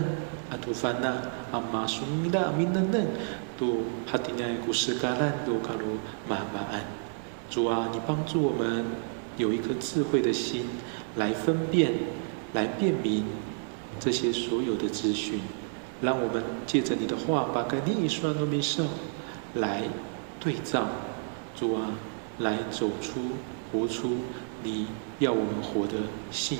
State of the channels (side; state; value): left; silent; 58 dB below the other